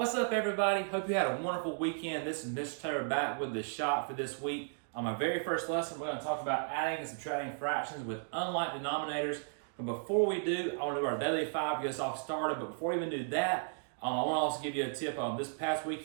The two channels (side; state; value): left; silent; digital silence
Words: up, everybody? Hope you had a wonderful weekend. This is Mr. Taylor back with the shot for this week. On my very first lesson, we're going to talk about adding and subtracting fractions with unlike denominators. But before we do, I want to do our daily five to get us all started. But before we even do that, I want to also give you a tip. This past